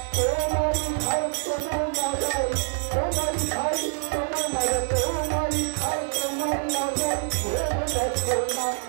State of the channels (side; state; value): left; silent; digital silence